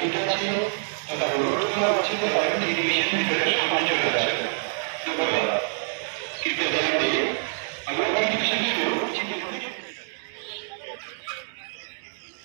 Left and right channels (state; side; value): silent; left; digital silence